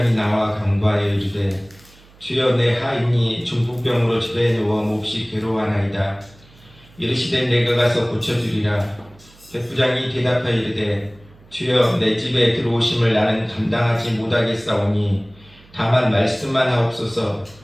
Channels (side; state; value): right; noise; hum, 26 dB below the sound